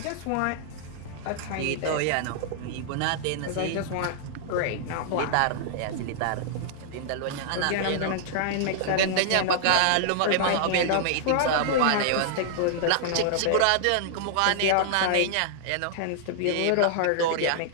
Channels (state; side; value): different; both; correlation -0.01